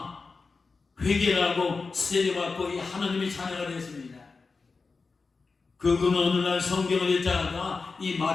회개를 하고 세례받고 이 하나님의 자녀가 되었습니다. 그는 어느 날 성경을 읽다가 이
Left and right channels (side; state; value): right; quieter; 4.3 dB